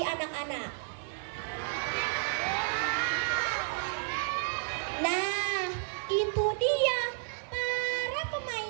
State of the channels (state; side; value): silent; left; digital silence